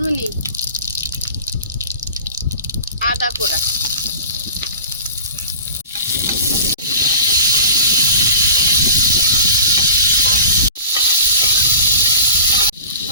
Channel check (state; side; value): inverted; both; correlation -0.39